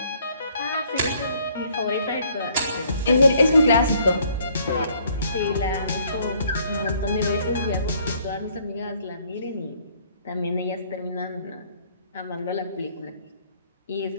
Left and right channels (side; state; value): both; inverted; correlation -0.63